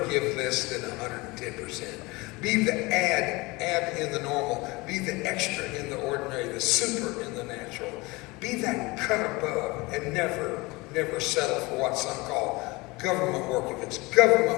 give less than 110%. Be the add in the normal. Be the extra in the ordinary, the super in the natural. Be that cut above, and never settle for what some call government work. If it's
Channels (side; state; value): right; quieter; 23.6 dB